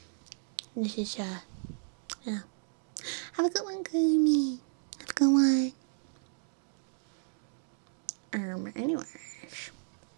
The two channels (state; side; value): silent; left; digital silence